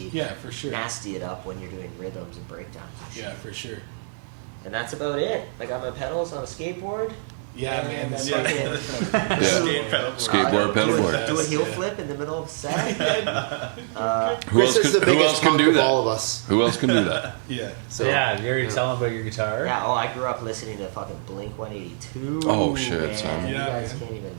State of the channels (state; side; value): silent; left; digital silence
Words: Yeah, for sure. Nasty it up when you're doing rhythms and breakdowns. And shit. Yeah, for sure. And that's about it. I got my pedals on a skateboard. Yeah, man, the skateboard fucking pedalboard. Skateboard, Do a pedalboard. Best, heel yeah. flip in the middle of set. Who Chris else is the can- who else biggest can punk do of that? all of us. Who else can do that? Yeah. So yeah, you already tell them about your guitar. Yeah, I grew up listening to fucking Blink 182. Oh, shit, man. son. You Yeah, guys man. can't even